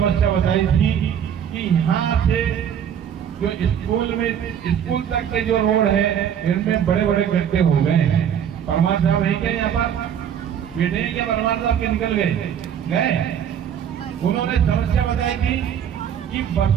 बताई थी कि यहाँ से जो स्कूल तक के जो रोड है इनमें बड़े बड़े गड्ढे हो गए हैं। परमान साहब है क्या यहाँ पर? बैठे हैं क्या परमान साहब के? निकल गए। उन्होंने समस्या बताई थी कि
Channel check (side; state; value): left; quieter; 8.8 dB